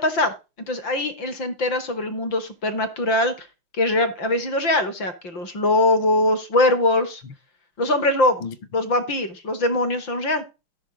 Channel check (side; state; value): right; late; 5.8 ms